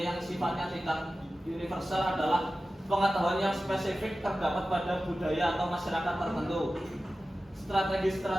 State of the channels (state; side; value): normal; both; correlation 0.95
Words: yang sifatnya tidak universal adalah pengetahuan yang spesifik terdapat pada budaya atau masyarakat tertentu.